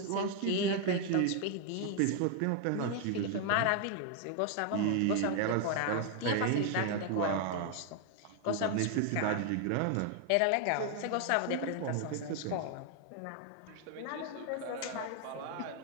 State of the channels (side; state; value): both; different; correlation 0.00